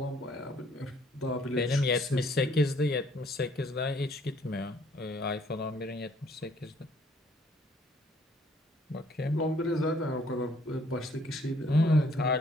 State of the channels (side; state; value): both; normal; correlation 0.63